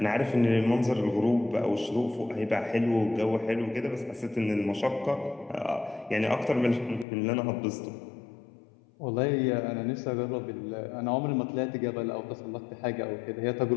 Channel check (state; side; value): drops out; right; at 7.1 s